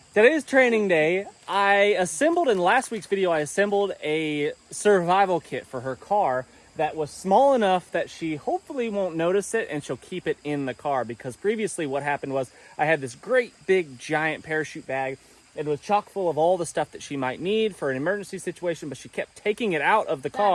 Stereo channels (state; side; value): identical; both; correlation 1.00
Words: Today is training day. I assembled, in last week's video, I assembled a survival kit for her car that was small enough that she hopefully won't notice it and she'll keep it in the car, because previously what happened was I had this great big giant parachute bag. It was chock full of all the stuff that she might need for an emergency situation, but she kept taking it out of the